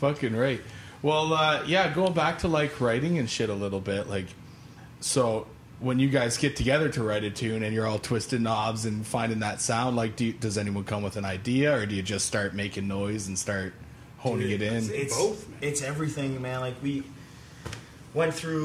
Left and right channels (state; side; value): identical; both; correlation 1.00